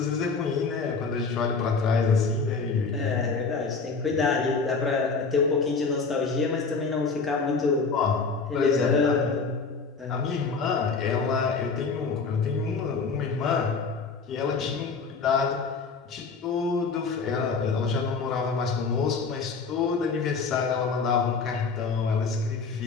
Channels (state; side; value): quieter; right; 4.7 dB